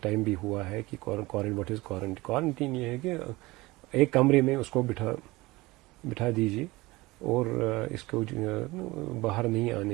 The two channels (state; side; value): quieter; left; 21.0 dB